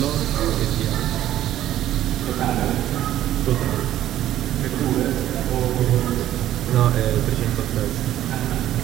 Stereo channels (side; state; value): left; quieter; 12.7 dB